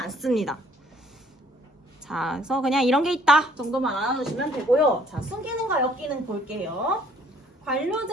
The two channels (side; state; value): both; normal; correlation 0.61